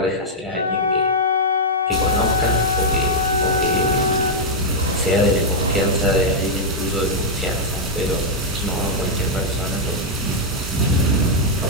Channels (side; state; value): both; normal; correlation -0.04